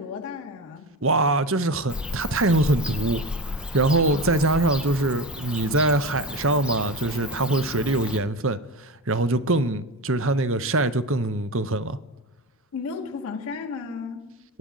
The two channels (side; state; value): both; normal; correlation 0.25